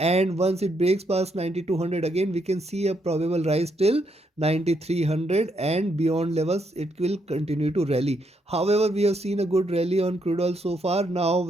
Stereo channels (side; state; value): both; normal; correlation 0.76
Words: once it breaks past 9200 again, we can see a probable rise till 9300, and beyond levels it will continue to rally. However, we have seen a good rally on crude oil so far. Now